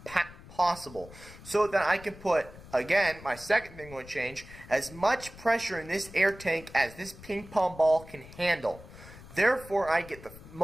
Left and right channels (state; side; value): noise; left; rumble, 18 dB below the sound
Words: possible, so that I can put, again, my second thing I'm going to change, as much pressure in this air tank as this ping pong ball can handle. Therefore, I get the